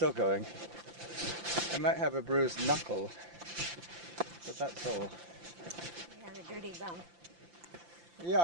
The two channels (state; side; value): late; left; 5.8 ms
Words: going. I might have a bruised knuckle, but that's all. You have a dirty bum. Yeah,